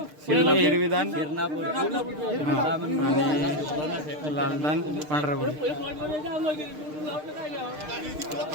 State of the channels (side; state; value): left; late; 6.6 ms